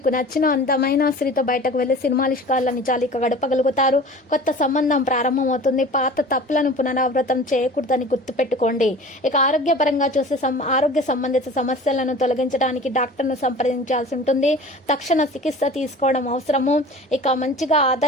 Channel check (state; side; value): normal; both; correlation 0.40